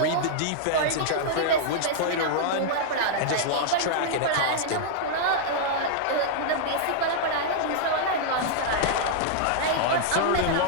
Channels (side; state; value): both; different; correlation -0.01